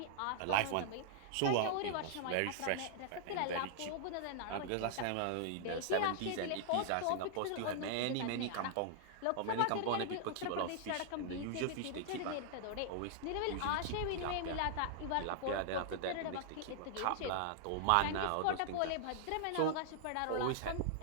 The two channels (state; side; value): different; both; correlation -0.01